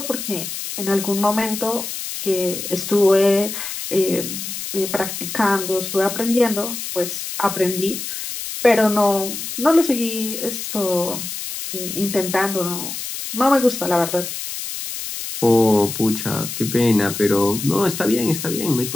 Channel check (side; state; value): left; noise; hiss, 7 dB below the sound